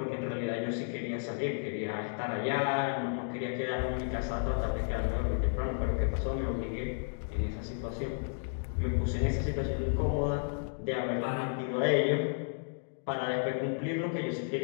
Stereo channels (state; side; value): silent; right; digital silence